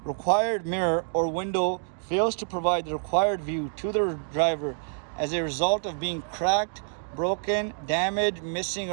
Required mirror or window fails to provide the required view to the driver as a result of being cracked, broken, damaged, missing,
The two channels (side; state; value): left; silent; digital silence